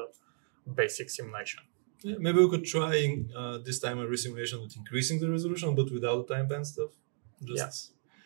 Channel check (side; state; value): left; silent; 56 dB below the other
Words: basic simulation. Yeah, maybe we could try this time a resimulation with increasing the resolution, but without the time band stuff.